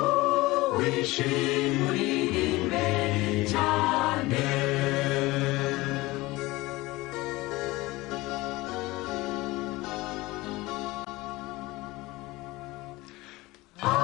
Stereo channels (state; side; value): quieter; right; 20.4 dB